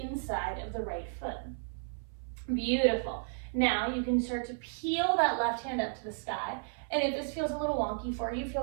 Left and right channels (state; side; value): silent; left; 56 dB below the other